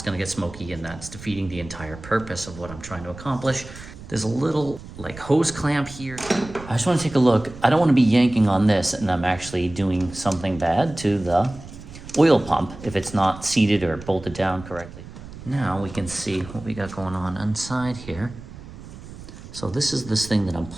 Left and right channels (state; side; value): noise; right; rumble, 15 dB below the sound